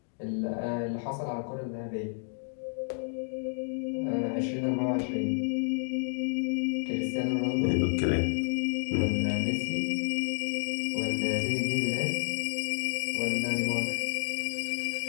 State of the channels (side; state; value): right; silent; digital silence